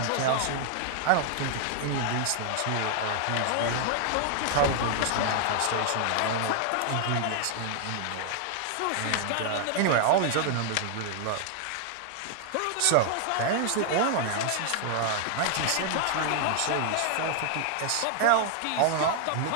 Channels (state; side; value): different; both; correlation 0.00